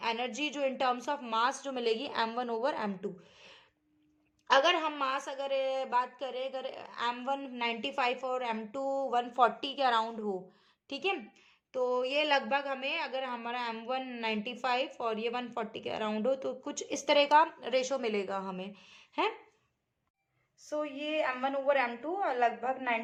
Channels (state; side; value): identical; both; correlation 1.00